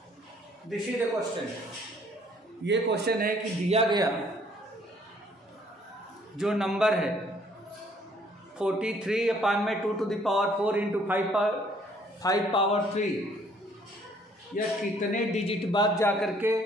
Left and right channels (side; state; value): both; normal; correlation 0.62